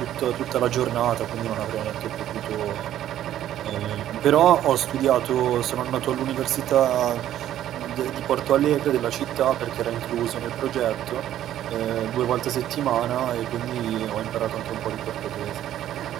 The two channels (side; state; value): left; quieter; 12.0 dB